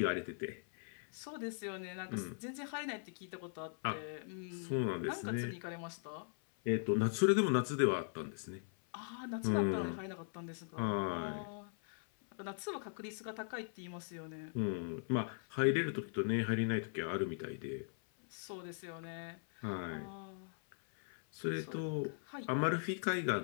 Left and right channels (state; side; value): silent; right; 51 dB below the other